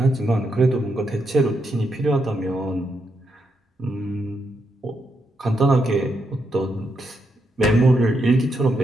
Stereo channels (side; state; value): both; normal; correlation 0.81